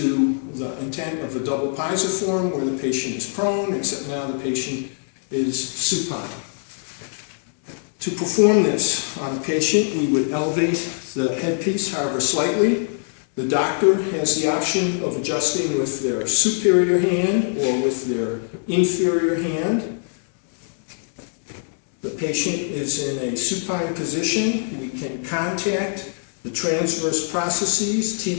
the intent of a double pisiform where the patient is prone, except now the patient is supine. To perform this on a patient, we would elevate the headpiece, however slightly. The doctor has the option of adjusting with their superior hand or with their inferior hand. The patient is in a supine position. We can contact the transverse processes,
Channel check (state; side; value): silent; right; digital silence